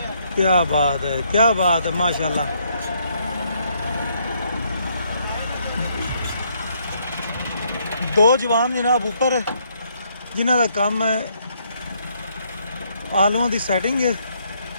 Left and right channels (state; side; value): inverted; both; correlation -0.71